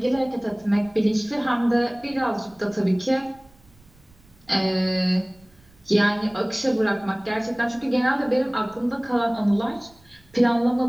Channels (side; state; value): right; noise; rumble, 29 dB below the sound